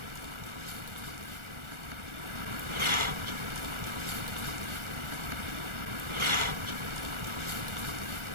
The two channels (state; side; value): late; left; 1.4 ms